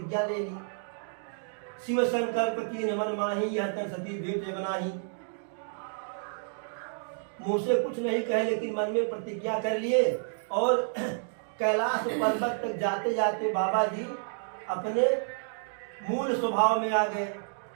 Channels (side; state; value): left; silent; digital silence